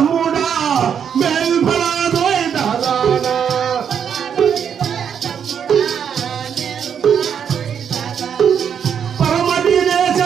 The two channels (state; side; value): quieter; left; 7.9 dB